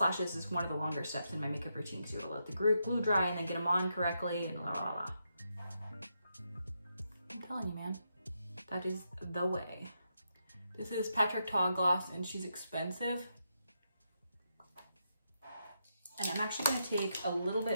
is one of the longer steps in my makeup routine because you gotta let the glue dry and then get them on correctly and la la la. I'm telling you, man, that is the way. This is Patrick Ta gloss and she's expensive. And I'm actually gonna take a little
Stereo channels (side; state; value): both; inverted; correlation -0.83